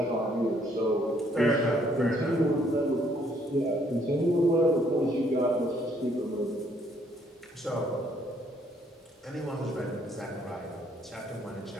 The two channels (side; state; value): both; normal; correlation 0.67